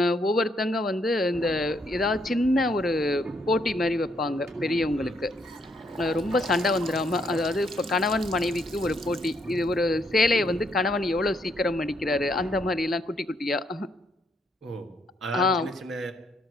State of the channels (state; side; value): normal; both; correlation 0.73